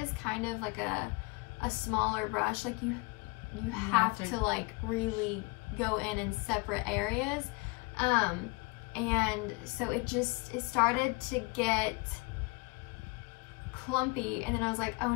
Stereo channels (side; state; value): right; quieter; 27.0 dB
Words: kind of like a smaller brush, like you have to like really go in separate areas, and so it started to get clumpy, and then I was like, oh